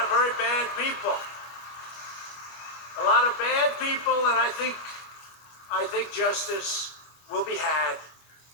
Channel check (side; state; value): right; late; 25 ms